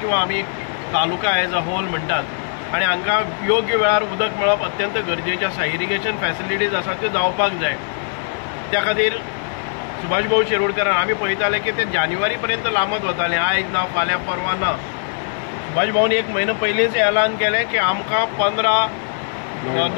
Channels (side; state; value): right; silent; 66 dB below the other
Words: किंवा आमी तालुका एज अ होल म्हणटात आनी हांकां योग्य वेळार उदक मेळप अत्यंत गरजेचें आसा. इरिगेशन फॅसिलिटीज आसा त्यो जावपाक जाय. त्या खातीर सुभाष भाऊ शिरोडकरान आमी पळयताले की ते जानेवारी पर्यंत लांबत वताले, आयज ना फाल्यां परवां ना. सुभाष भाऊन एक म्हयनो पयलींच ऐलान केलें की आमकां 15